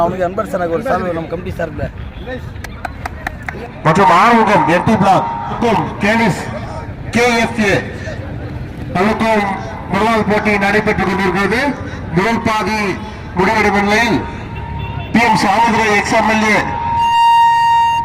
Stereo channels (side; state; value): both; identical; correlation 1.00